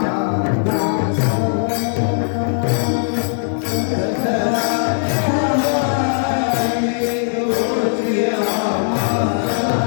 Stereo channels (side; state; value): right; silent; digital silence